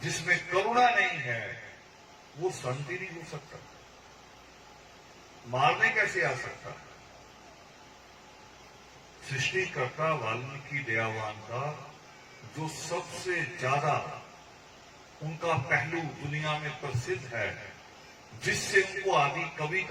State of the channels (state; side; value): identical; both; correlation 1.00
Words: करुणा नहीं है वो संत ही नहीं हो सकता, मारने कैसे आ सकता। सृष्टिकर्ता वाल्मीकि दयावान का जो सबसे ज्यादा उनका पहलू दुनिया में प्रसिद्ध है, जिससे उनको आदि कवि